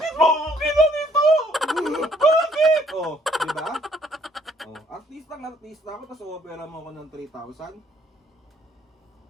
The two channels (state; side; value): normal; both; correlation 0.64